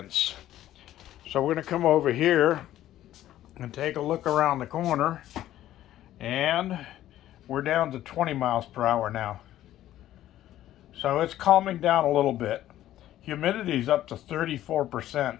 So we're going to come over here and take a look around the corner. And we're down to 20 miles per hour now. So it's calming down a little bit. Humidity's up to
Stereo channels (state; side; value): quieter; right; 13.2 dB